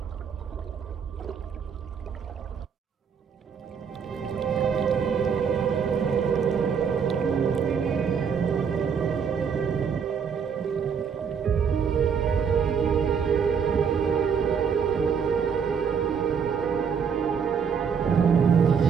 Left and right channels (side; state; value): left; quieter; 6.7 dB